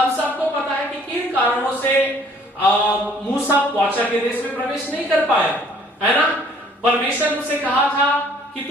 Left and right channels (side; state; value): both; normal; correlation 0.58